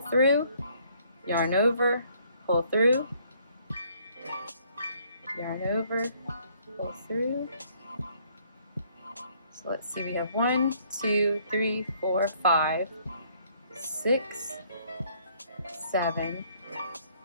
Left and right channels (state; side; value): inverted; both; correlation -0.64